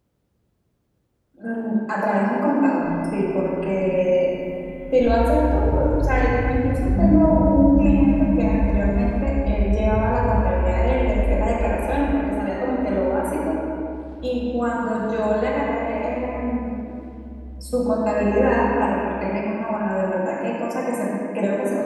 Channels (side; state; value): both; identical; correlation 1.00